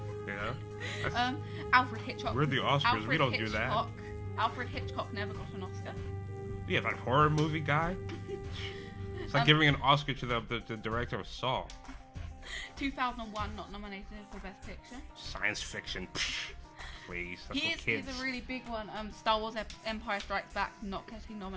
know? Alfred Hitchcock. We're the Oscars, we don't do that. Alfred Hitchcock never got an Oscar. Yeah, that horror movie guy. It's like giving an Oscar to the director of Saw. 2001 not nominated for Best Picture. Science fiction. Please, that's for kids. Here's a really big one. Star Wars Empire Strikes Back not getting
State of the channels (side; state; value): both; identical; correlation 1.00